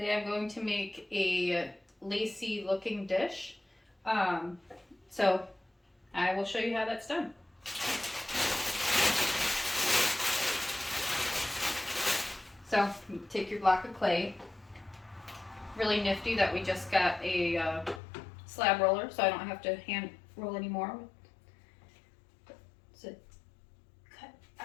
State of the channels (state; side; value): drops out; right; at 18.0 s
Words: I'm going to make a lacy looking dish. Um, so I will show you how that's done. So you take your block of clay. Really nifty that we just got a slab roller, so I don't have to hand roll anymore. So cut